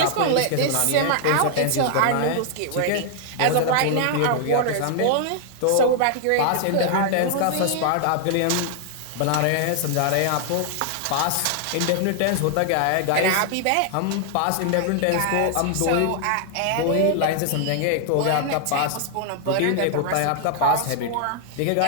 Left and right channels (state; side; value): different; both; correlation 0.00